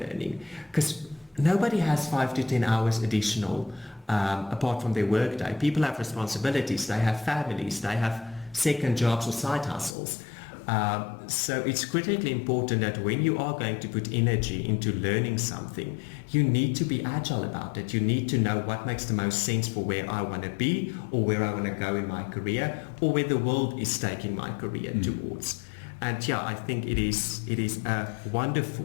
Because nobody has 5 to 10 hours additional apart from their workday. People have responsibilities, they have families, they have second jobs or side hustles. So it's critically important that when you are going to put energy into learning something, you need to be agile about it. You need to know what makes the most sense for where I want to be, or where I want to go in my career, or where the world is taking my career towards. And yeah, I think it is a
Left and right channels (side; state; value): right; drops out; at 10.0 s